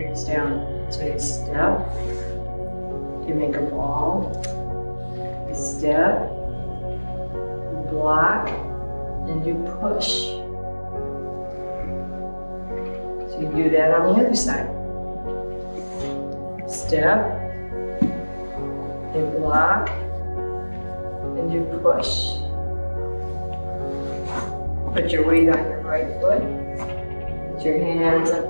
down. So you step, you make a ball, you step, you block, and you push. So you do that on the other side. Step, you block, and you push. Put your weight on your right foot. Put your hands up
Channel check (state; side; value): inverted; both; correlation -1.00